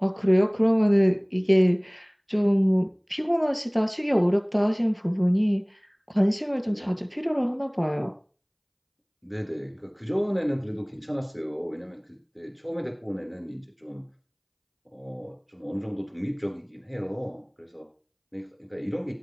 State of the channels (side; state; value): both; identical; correlation 1.00